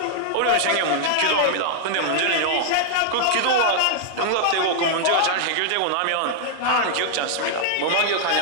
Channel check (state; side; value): different; both; correlation -0.01